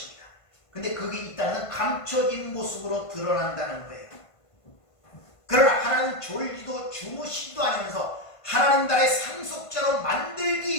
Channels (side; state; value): right; late; 1.5 ms